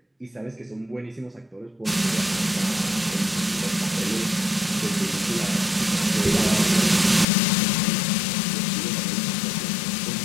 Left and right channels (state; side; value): drops out; right; at 7.2 s